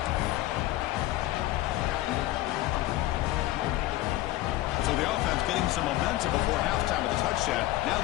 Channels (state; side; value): quieter; right; 16.6 dB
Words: So the offense getting some momentum before halftime with a touchdown. Now